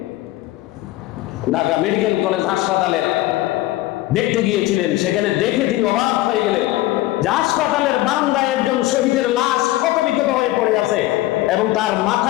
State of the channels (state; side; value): quieter; right; 17.0 dB